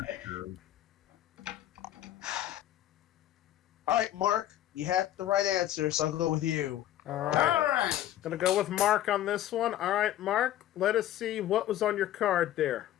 All right, Mark, you had the right answer, so I'll go with you. All right. Gonna go with Mark on this one. All right, Mark, let us see what was on your card there.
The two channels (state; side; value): quieter; right; 12.8 dB